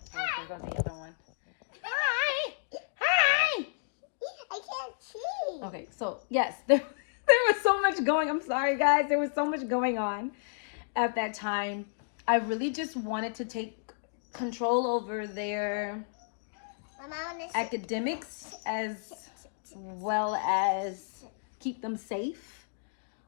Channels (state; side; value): silent; right; digital silence